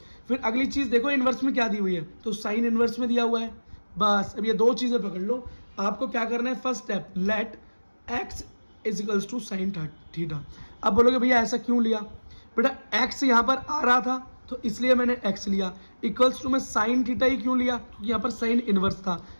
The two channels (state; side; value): inverted; both; correlation -1.00